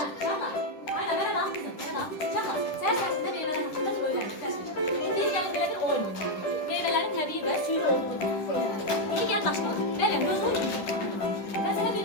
Aynen merhaba kızım. Merhaba. Şaka. Sen sayesinde meyveler hakkında öğrendik. Bildiğin yani böyle bir oyun oynuyor. Meyvelerin tabii ve suyu olduğunu. İyi gel başlayalım. Benim göz oyunu. Ben sana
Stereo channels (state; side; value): late; right; 10 ms